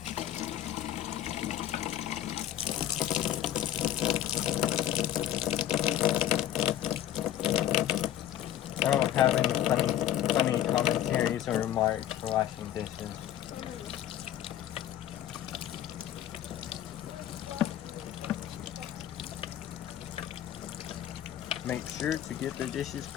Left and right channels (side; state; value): right; quieter; 11.7 dB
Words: I don't have any funny commentaries or remarks for washing dishes. Make sure to get the dishes